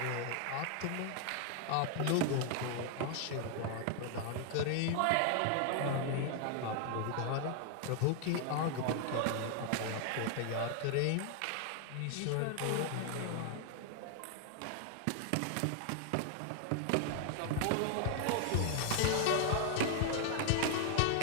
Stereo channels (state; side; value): different; both; correlation 0.00